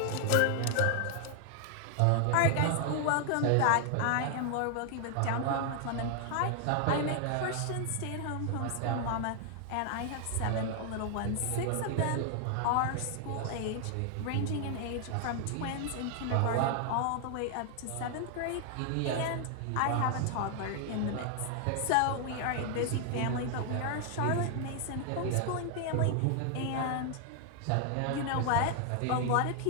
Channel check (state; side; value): different; both; correlation 0.00